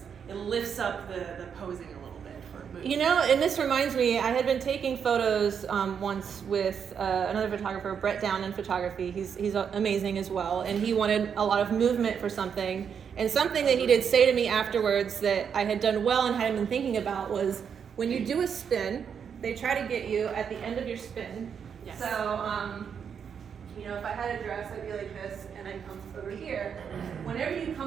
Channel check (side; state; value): left; quieter; 7.3 dB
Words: it lifts up the posing a little bit for movement. And this reminds me, I had been taking photos once with another photographer, Brett Down in photography. He's amazing as well, and he wanted a lot of movement for something. And something that he did say to me afterwards that I had done well and hadn't been thinking about was, when you do a spin, they try to get you at the end of your spin. Yes. So, if I had a dress, I'd be like this, and I'd come over here. Whenever you